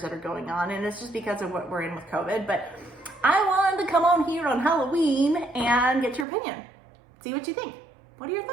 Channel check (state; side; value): drops out; left; at 6.2 s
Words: that are going on, and it's just because of what we're in with COVID. But I wanted to come on here on Halloween and get your opinion. See what you think. What are your